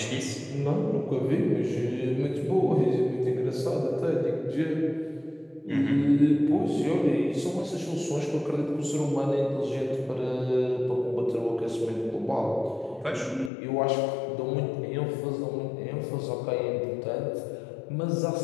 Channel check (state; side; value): drops out; right; at 13.5 s